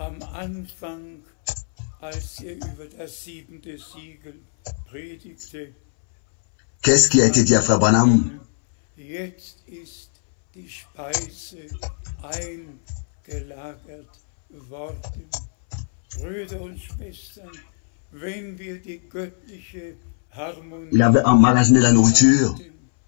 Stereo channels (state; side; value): silent; right; 64 dB below the other